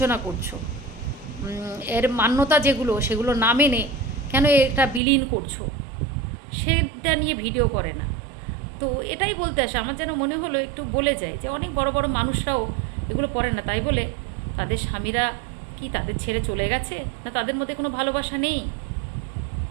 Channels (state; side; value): drops out; left; at 5.0 s